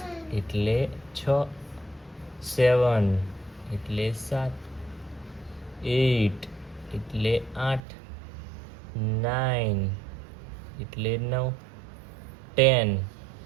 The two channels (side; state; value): left; drops out; at 7.8 s